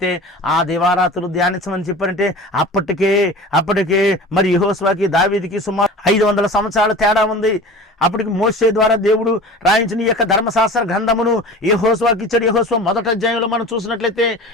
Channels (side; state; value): both; normal; correlation 0.37